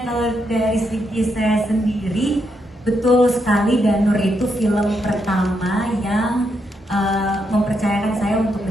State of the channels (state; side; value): normal; both; correlation 0.80